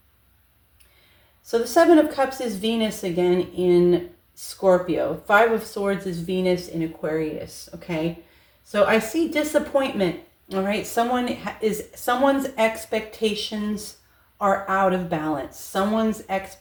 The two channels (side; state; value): both; identical; correlation 1.00